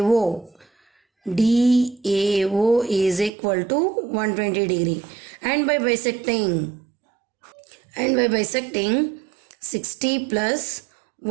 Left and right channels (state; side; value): drops out; left; at 3.3 s